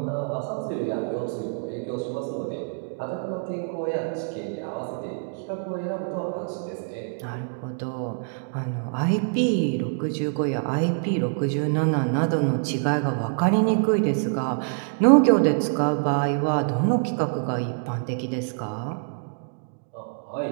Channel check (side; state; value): left; silent; 61 dB below the other